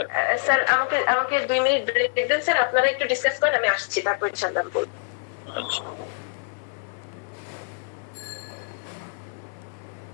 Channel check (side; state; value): right; silent; digital silence